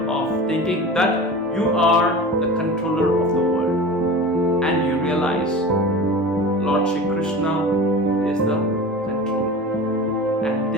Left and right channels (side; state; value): both; normal; correlation 0.34